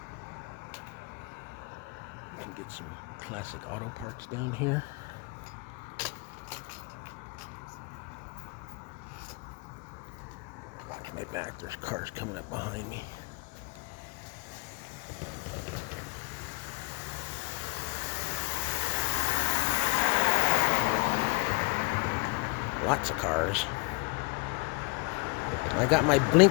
You can get some classic auto parts down here. Watch my back, there's cars coming up behind me. Lots of cars. I got my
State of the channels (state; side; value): quieter; right; 28.6 dB